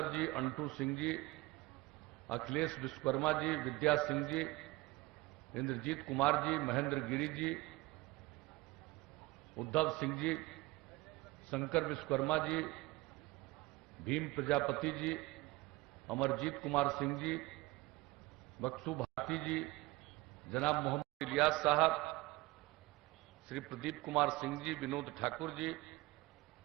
जी, अंटू सिंह जी, अखिलेश विश्वकर्मा जी, विद्या सिंह जी, इंद्रजीत कुमार जी, महेंद्र गिरी जी, उद्धव सिंह जी, शंकर विश्वकर्मा जी, भीम प्रजापति जी, अमरजीत कुमार सिंह जी, बक्सू भारती जी, जनाब मोहम्मद इलियास साहब, श्री प्रदीप कुमार सिंह जी, विनोद ठाकुर जी,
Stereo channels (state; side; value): quieter; left; 21.1 dB